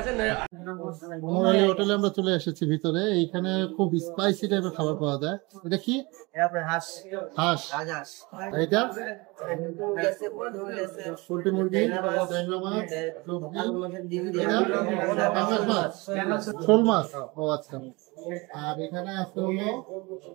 উমর আলী হোটেলে আমরা চলে এসেছি ভিতরে। এইখানে খুব স্পাইসি টাইপের খাবার পাওয়া যায়। এটা কি? হাঁস। এটা পোল্ট্রি মুরগি, ট্যাংরা মাছ, শোল মাছ। ও আচ্ছা। আর এখানে আছে হলো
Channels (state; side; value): quieter; left; 25.2 dB